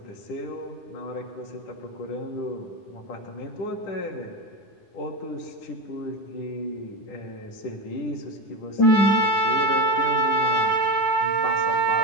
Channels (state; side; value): late; right; 10 ms